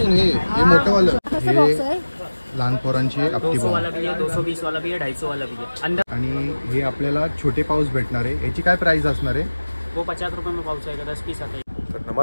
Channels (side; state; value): both; inverted; correlation -1.00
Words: हे मोठं वालं, हे लहान पोरांची आपटी 200 वाला भी है, 220 वाला भी है, 250 वाला भी है अंदर। आणि हे आपल्याला छोटे पाऊस भेटणार आहे। याची काय प्राइस असणार आहे? वो 50 रुपये में पाउच आएगा, 10 पीस आता है। तर